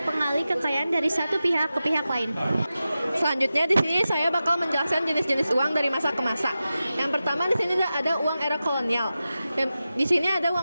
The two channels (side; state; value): both; inverted; correlation -0.93